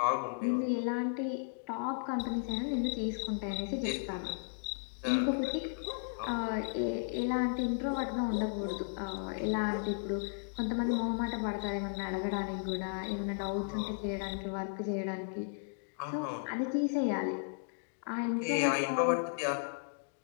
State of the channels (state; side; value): silent; right; digital silence